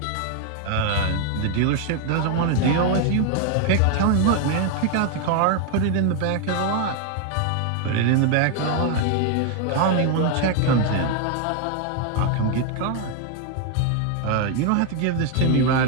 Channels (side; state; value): both; different; correlation 0.01